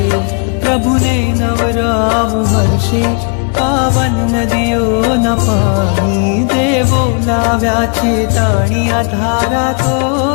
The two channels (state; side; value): quieter; right; 39.0 dB